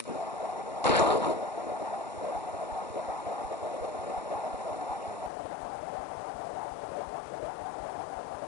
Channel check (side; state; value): right; drops out; at 5.3 s